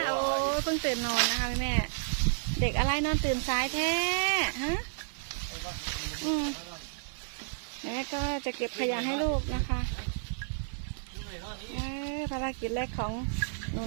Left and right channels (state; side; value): silent; left; 57 dB below the other